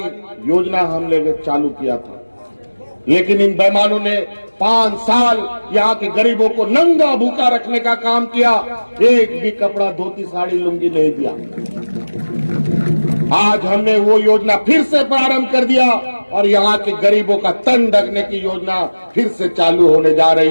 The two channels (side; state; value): both; inverted; correlation -1.00